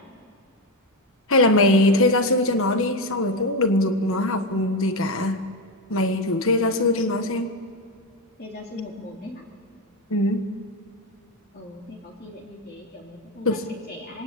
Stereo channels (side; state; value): both; normal; correlation 0.12